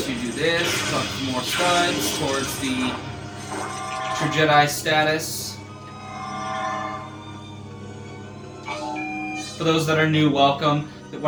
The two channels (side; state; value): both; identical; correlation 1.00